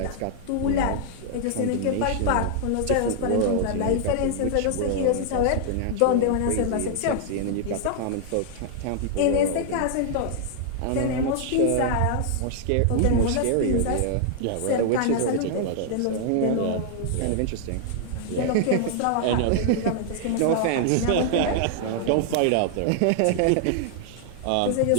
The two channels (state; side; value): different; both; correlation 0.00